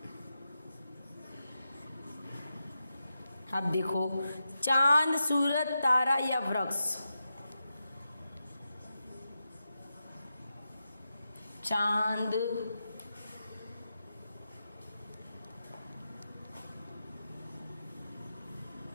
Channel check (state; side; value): inverted; both; correlation -0.89